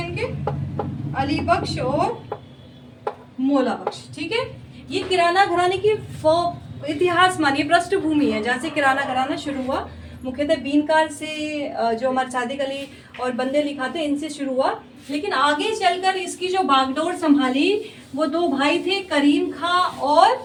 अली बख्श और मौला बख्श। ठीक है, ये किराना घराने की इतिहास मानिए पृष्ठभूमि है, जहाँ से किराना घराना शुरू हुआ। मुख्यतः बीनकार से, जो हमारे सादिक अली और बंदे अली खां थे, इनसे शुरू हुआ। लेकिन आगे चलकर इसकी जो बागडोर संभाली वो दो भाई थे, करीम खां,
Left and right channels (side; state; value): both; identical; correlation 1.00